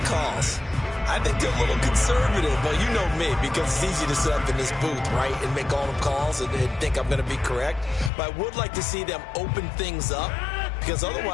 I think they're a little conservative. But you know me, because it's easy to sit up in this booth, right, and make all the calls and think I'm going to be correct. But I would like to see them open things up, because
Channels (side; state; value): right; drops out; at 8.1 s